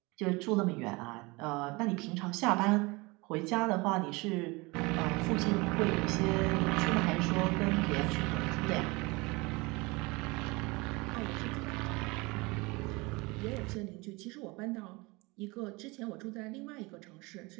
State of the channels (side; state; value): left; quieter; 25.0 dB